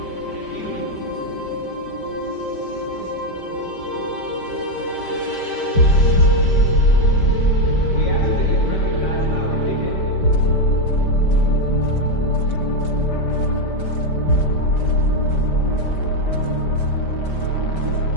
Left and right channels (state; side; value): late; right; 5.1 ms